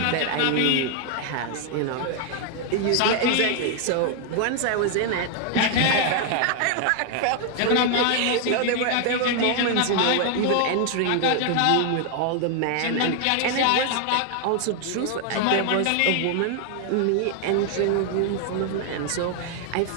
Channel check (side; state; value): both; different; correlation 0.00